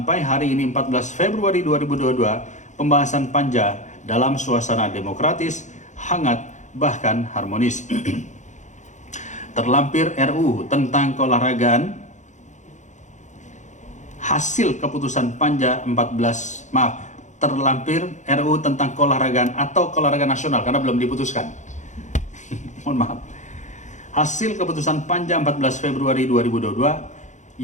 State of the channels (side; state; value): right; late; 0.35 ms